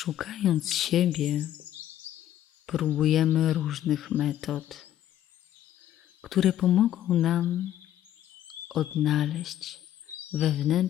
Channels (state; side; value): quieter; right; 12.0 dB